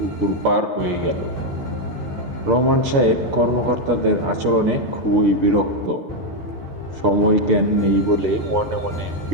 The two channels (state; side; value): late; left; 6.7 ms